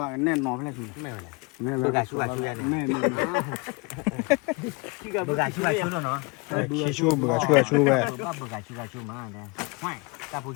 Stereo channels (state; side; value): quieter; right; 27.8 dB